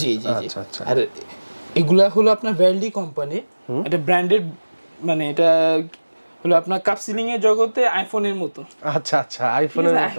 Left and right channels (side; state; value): both; inverted; correlation -1.00